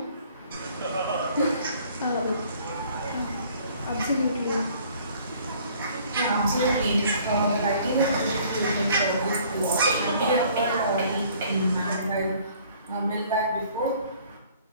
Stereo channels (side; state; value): both; inverted; correlation -0.56